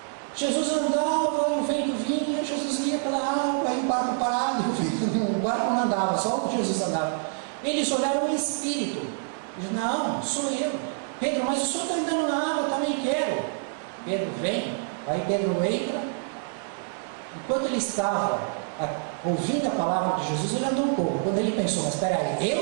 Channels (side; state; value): left; silent; digital silence